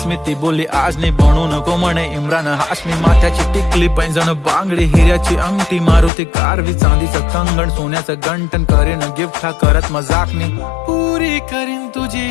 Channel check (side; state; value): right; drops out; at 6.1 s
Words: मी. ती बोलली आज नाही बनू नको म्हणे इम्रान हाशमी. माथ्याची टिकली पैंजण बांगडी हिऱ्याची अंगठी, मारुती कारवी चांदीचं कंगण सोन्याचं गंटन. करीन गिफ्ट हा करत मजाकनी, पुरी करीन तुझी